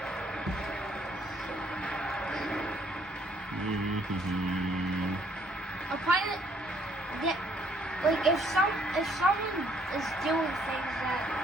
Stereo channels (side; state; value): both; normal; correlation 0.65